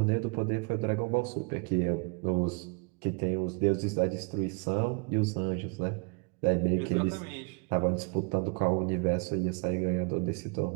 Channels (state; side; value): quieter; left; 32.2 dB